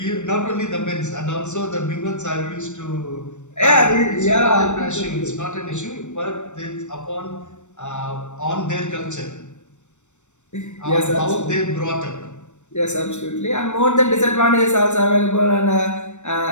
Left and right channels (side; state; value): right; late; 0.84 ms